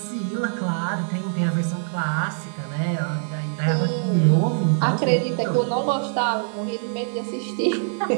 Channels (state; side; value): silent; left; digital silence